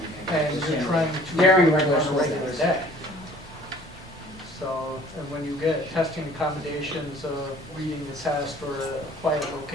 think. and you're trying to. During regular on a school regular days. day. So, and when you get testing accommodations of reading the test or a quiet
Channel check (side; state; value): both; normal; correlation 0.52